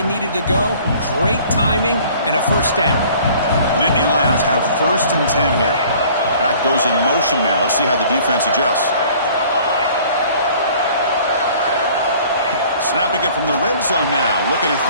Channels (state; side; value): inverted; both; correlation -0.52